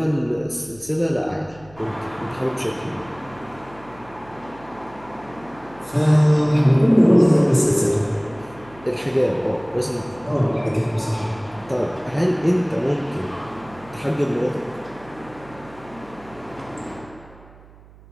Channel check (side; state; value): right; noise; hum, 23 dB below the sound